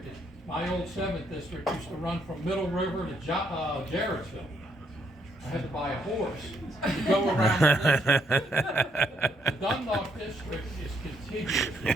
My old 7th district used to run from Middle River to Jarrettsville. I had to buy a horse to go around the district. The Dundalk district is contiguous.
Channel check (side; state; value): both; normal; correlation 0.72